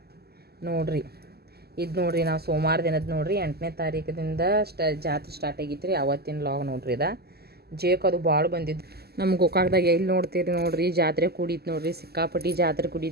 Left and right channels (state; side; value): late; left; 0.46 ms